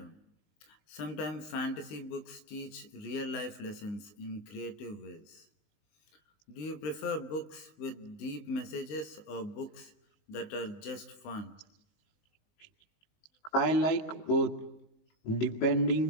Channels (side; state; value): right; late; 20 ms